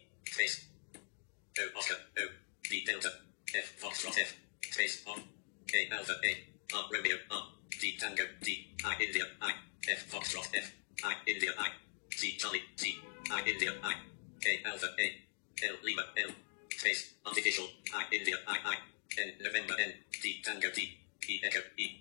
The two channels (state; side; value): silent; right; digital silence